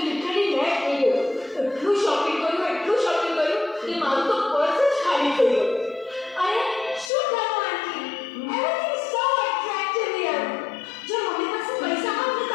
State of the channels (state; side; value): drops out; right; at 7.1 s